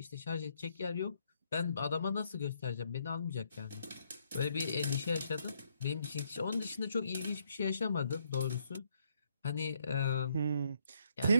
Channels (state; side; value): inverted; both; correlation -0.74